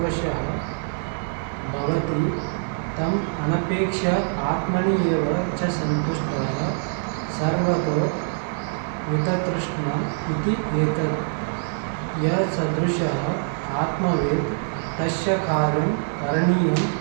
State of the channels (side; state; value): left; silent; 60 dB below the other